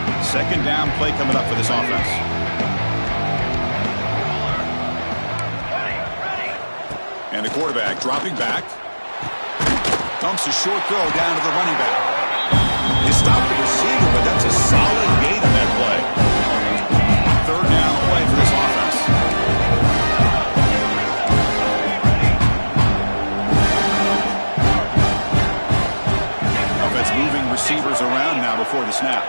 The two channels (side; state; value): both; inverted; correlation -1.00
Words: Second down play coming up for this offense. And the quarterback dropping back. Dumps a short throw down to the running back. He stopped the receiver, but that's a solid gain on that play. 3rd down play for this offense. Offense moving receivers around now before the snap.